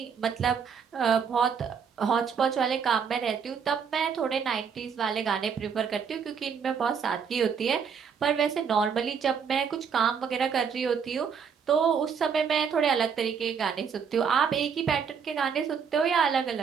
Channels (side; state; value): left; quieter; 6.7 dB